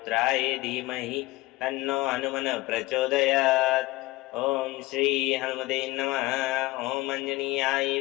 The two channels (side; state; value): right; quieter; 19.8 dB